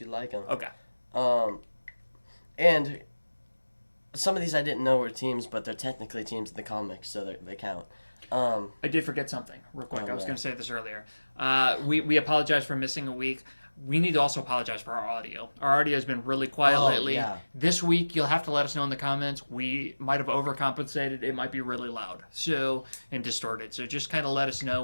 like them. Okay. And some of these I didn't know were teams, but they're technically teams in the comics, so they count. I did forget something real quick. I was going to say this earlier. We apologize for missing a week. We need to also apologize for our audio. Our audio has been really quiet lately. Yeah. This week, you'll have to let us know in the comments. We might have overcompensated. It might be really loud and distorted. So just kind of let us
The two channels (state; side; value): inverted; both; correlation -1.00